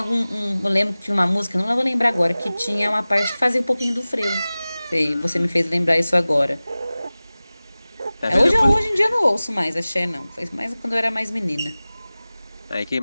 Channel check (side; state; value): both; inverted; correlation -0.98